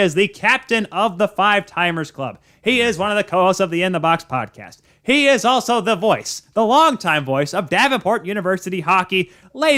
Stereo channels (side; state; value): both; identical; correlation 1.00